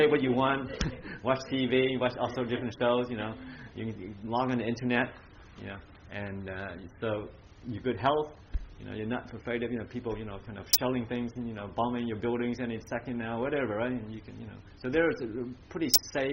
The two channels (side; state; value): both; identical; correlation 1.00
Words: what you want, watch TV, watch also different shows. You can log on the internet, and so your good health. You're not afraid of people kind of shelling things and bombing your buildings any second now, whatever, right? And you can so there's a pretty